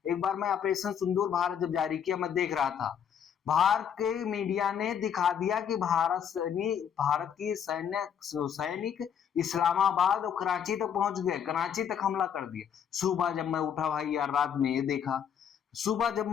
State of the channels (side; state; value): right; quieter; 8.2 dB